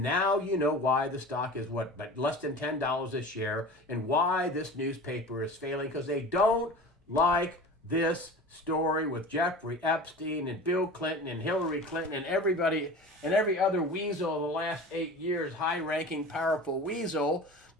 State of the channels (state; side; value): normal; both; correlation 0.36